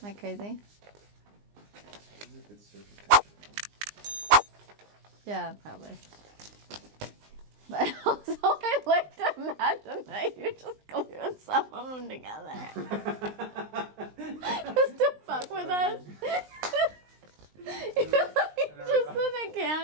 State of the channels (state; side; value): late; left; 19 ms